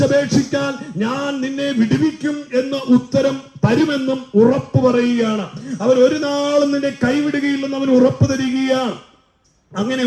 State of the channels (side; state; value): both; identical; correlation 1.00